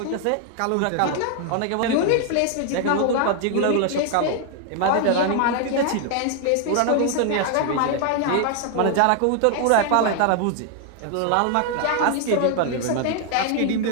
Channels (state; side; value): different; both; correlation 0.00